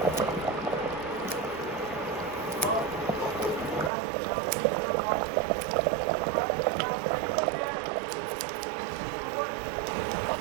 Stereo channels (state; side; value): drops out; left; at 3.9 s